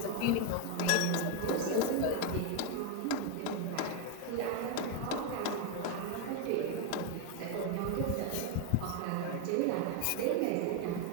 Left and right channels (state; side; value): different; both; correlation 0.01